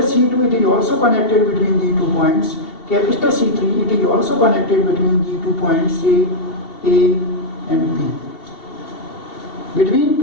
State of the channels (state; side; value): late; right; 2.7 ms